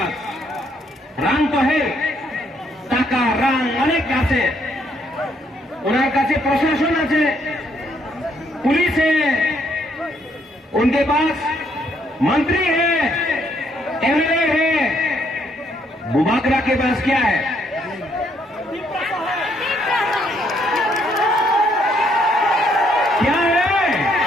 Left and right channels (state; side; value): normal; both; correlation 0.71